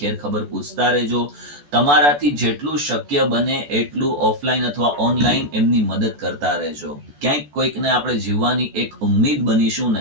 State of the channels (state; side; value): late; left; 14 ms